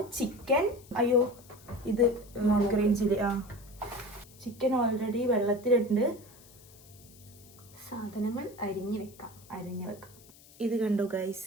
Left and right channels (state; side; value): noise; left; hiss, 23 dB below the sound